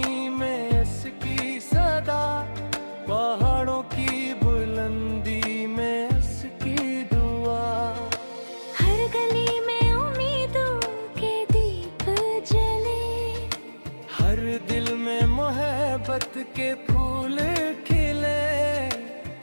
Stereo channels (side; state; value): both; inverted; correlation -1.00